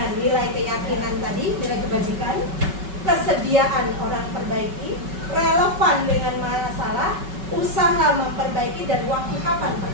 nilai keyakinan tadi, nilai kebajikan, kesediaan orang perbaiki, relevan dengan masalah, usaha memperbaiki, dan waktu kapan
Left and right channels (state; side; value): late; left; 5.3 ms